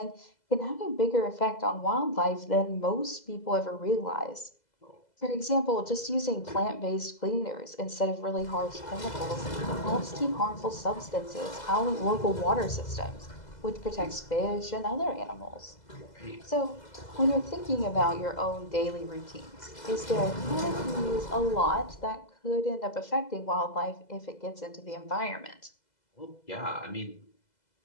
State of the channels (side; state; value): right; late; 2.0 ms